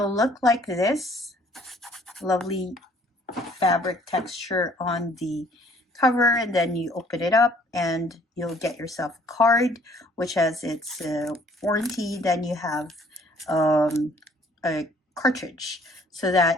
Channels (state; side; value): normal; both; correlation 0.59